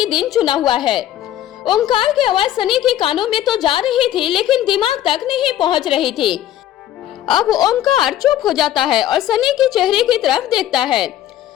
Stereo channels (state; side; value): quieter; right; 12.4 dB